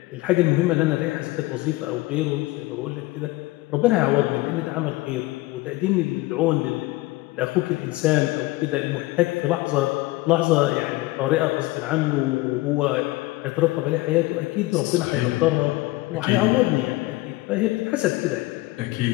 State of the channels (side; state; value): right; quieter; 19.8 dB